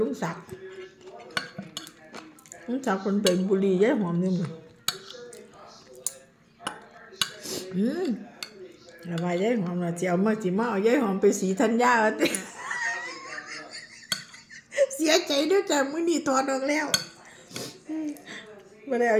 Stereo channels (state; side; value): identical; both; correlation 1.00